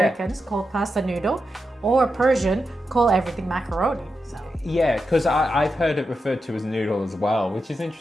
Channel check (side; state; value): both; normal; correlation 0.88